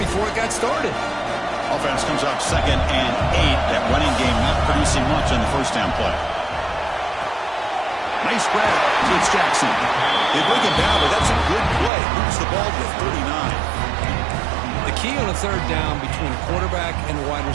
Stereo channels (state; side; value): drops out; left; at 11.9 s